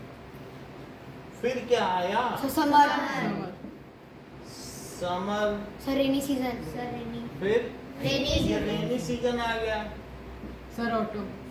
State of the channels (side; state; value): both; identical; correlation 1.00